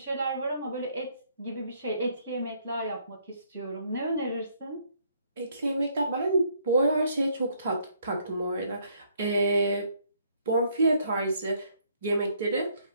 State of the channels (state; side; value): inverted; both; correlation -0.68